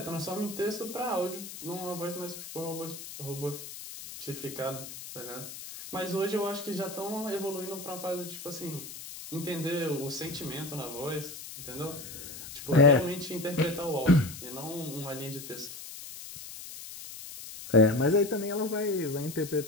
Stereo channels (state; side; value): noise; left; hiss, 11 dB below the sound